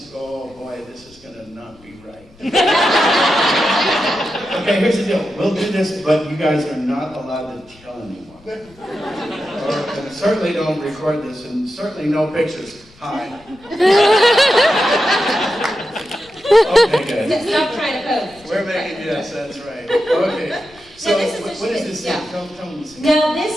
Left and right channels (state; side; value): noise; left; rumble, 27 dB below the sound